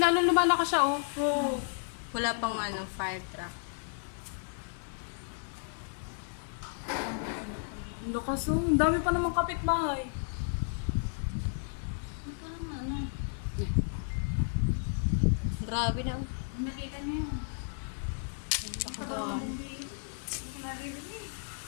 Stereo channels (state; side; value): silent; right; digital silence